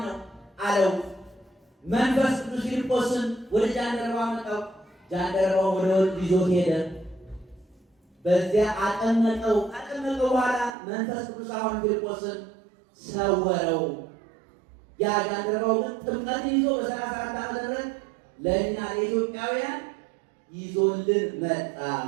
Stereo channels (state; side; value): drops out; left; at 10.8 s